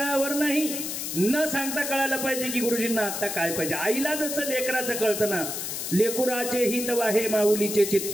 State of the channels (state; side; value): noise; left; hiss, 4 dB below the sound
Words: नाही, न सांगता कळायला पाहिजे की गुरुजींना आता काय पाहिजे. आईला जसं लेकराचं कळतं ना, लेकुराचे हित वाहे माऊलीचे चित्त,